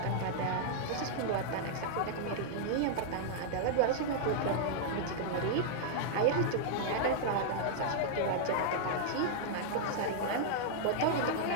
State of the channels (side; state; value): both; different; correlation -0.01